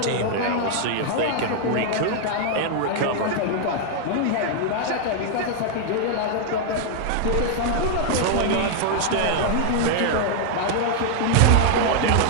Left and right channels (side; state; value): both; different; correlation 0.00